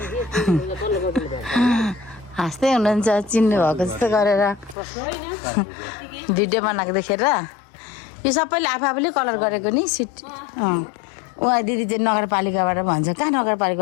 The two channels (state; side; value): drops out; right; at 4.8 s